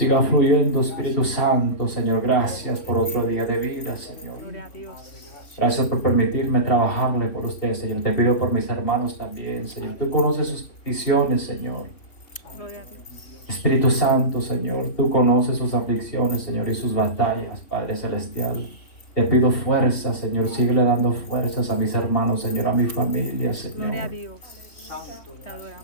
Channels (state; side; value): late; right; 3.1 ms